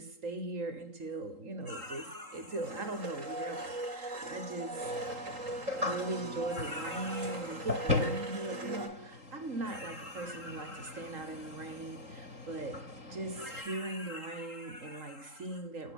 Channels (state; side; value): late; left; 3.8 ms